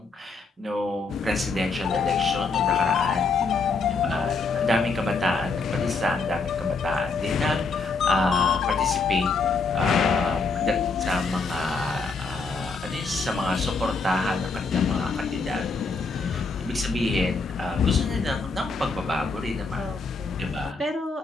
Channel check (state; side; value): quieter; right; 4.2 dB